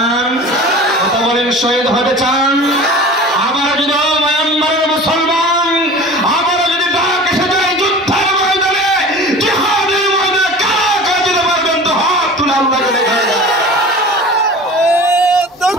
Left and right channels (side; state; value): both; normal; correlation 0.38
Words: কথা বলেন, শহীদ হতে চান? আমার যদি মায়ানমারের মুসলমান আমার যদি ডাক এসে যায় যুদ্ধের ময়দানে, জিহাদের ময়দানে, কারা কারা যেতে পারবেন তো হাত তুলে আল্লাহকে দেখায়।